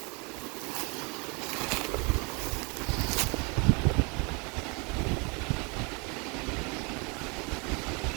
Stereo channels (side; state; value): left; quieter; 30.8 dB